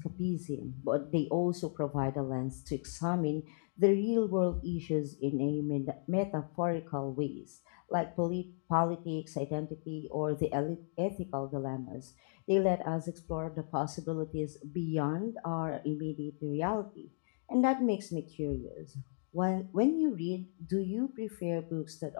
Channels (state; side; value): silent; right; digital silence